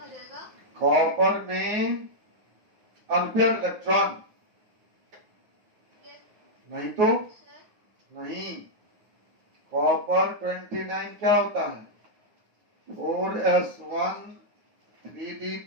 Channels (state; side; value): late; left; 9.4 ms